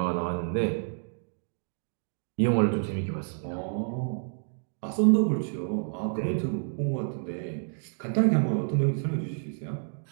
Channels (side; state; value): left; silent; digital silence